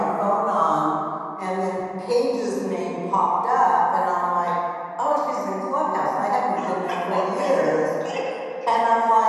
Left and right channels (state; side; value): identical; both; correlation 1.00